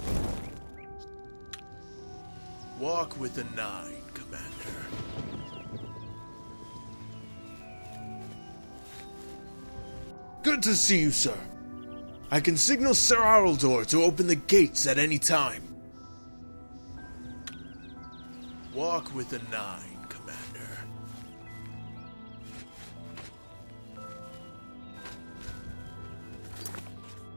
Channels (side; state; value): both; inverted; correlation -1.00